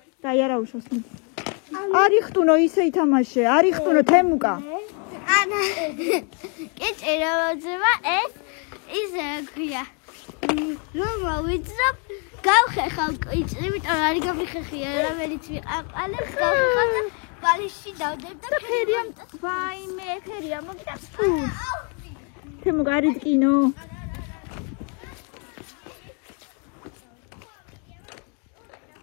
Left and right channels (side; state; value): right; quieter; 38.5 dB